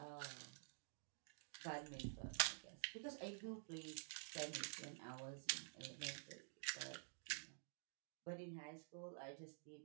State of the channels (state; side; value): silent; left; digital silence